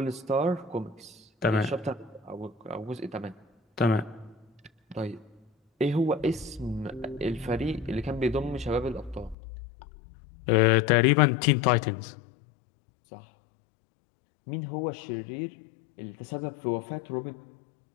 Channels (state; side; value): drops out; right; at 9.3 s